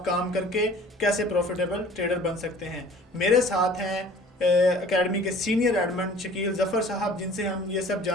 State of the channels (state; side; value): normal; both; correlation 0.49